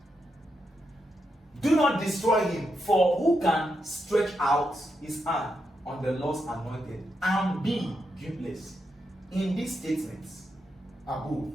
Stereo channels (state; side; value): normal; both; correlation 0.84